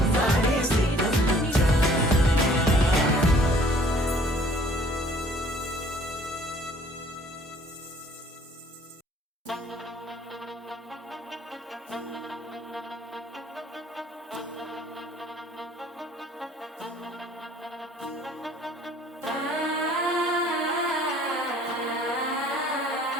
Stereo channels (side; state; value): both; normal; correlation 0.56